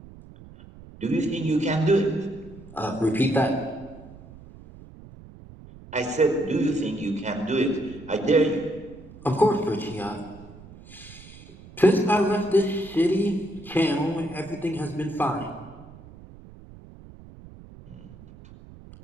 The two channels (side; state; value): right; noise; rumble, 19 dB below the sound